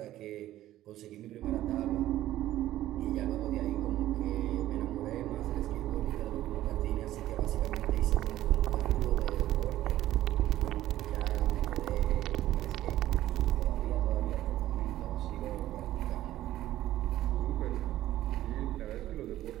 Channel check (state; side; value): quieter; left; 14.1 dB